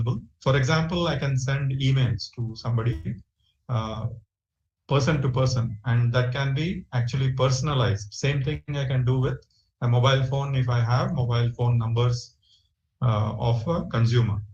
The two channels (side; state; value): both; identical; correlation 1.00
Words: For example, I can send emails to somebody, person to person, and that can be actually personalized. Same thing I can do with a mobile phone if I have mobile phone numbers of a consumer.